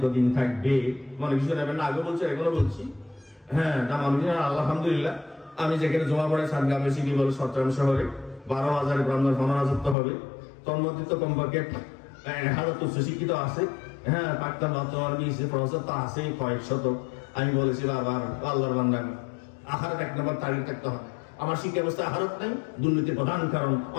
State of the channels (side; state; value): right; drops out; at 10.0 s